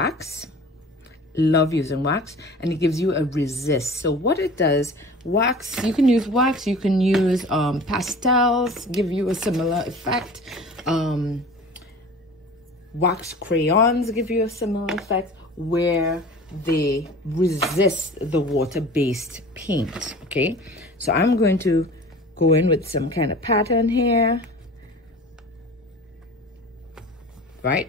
Love using wax, and it gives you a resist. So what it does, wax, you can use wax, you can use pastels, give you a similar effect. Wax crayons give you a similar effect where they resist the water-based paint. Okay, so I'm going to go in with some kind of pattern here. right?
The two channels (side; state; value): both; normal; correlation 0.40